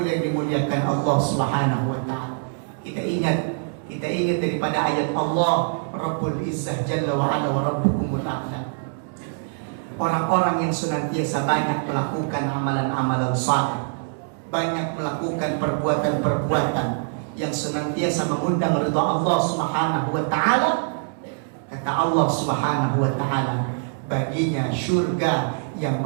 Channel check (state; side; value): silent; left; digital silence